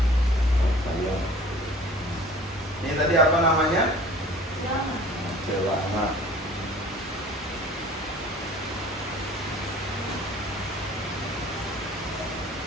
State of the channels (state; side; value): normal; both; correlation 0.47